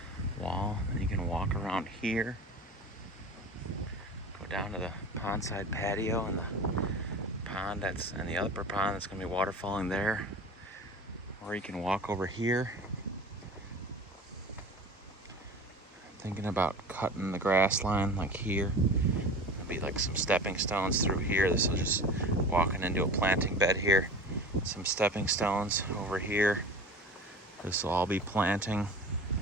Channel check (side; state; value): both; normal; correlation 0.36